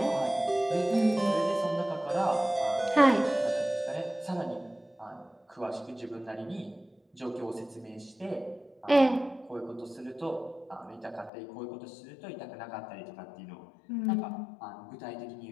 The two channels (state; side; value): drops out; right; at 11.3 s